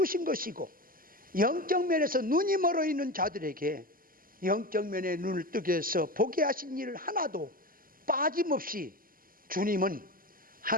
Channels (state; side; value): late; left; 0.41 ms